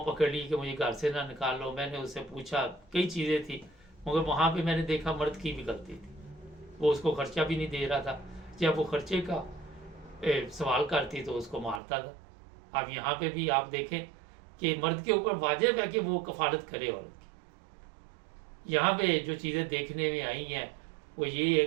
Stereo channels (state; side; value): drops out; left; at 11.8 s